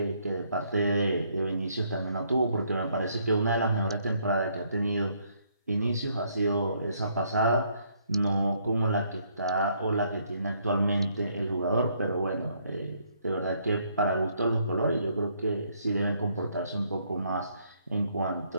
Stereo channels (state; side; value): inverted; both; correlation -0.69